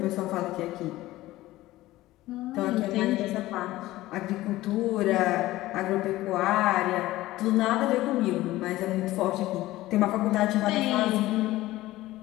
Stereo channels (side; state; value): right; quieter; 16.9 dB